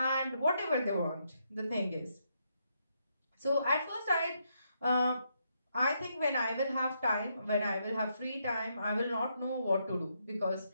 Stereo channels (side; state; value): both; inverted; correlation -0.78